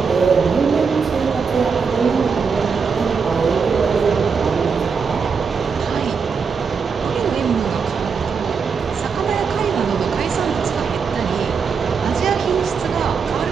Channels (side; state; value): left; quieter; 5.7 dB